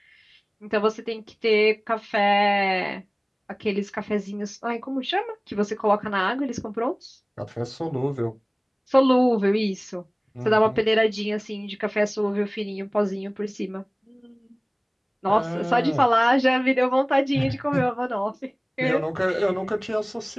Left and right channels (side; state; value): both; identical; correlation 1.00